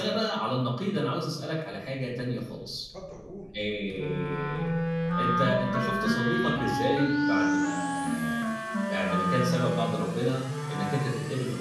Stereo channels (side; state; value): both; identical; correlation 1.00